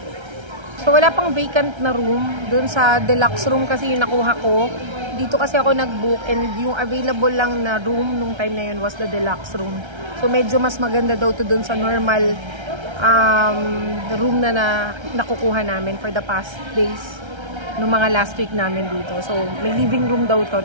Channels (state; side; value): late; left; 1.3 ms